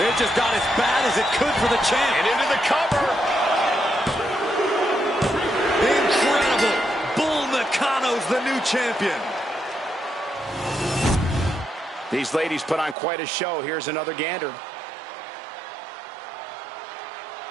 It just got as bad as it could for the champ. And into the cover. Incredible. Bull Nakano's the new champion. These ladies put on quite a show. Here's another gander.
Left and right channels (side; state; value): left; drops out; at 13.0 s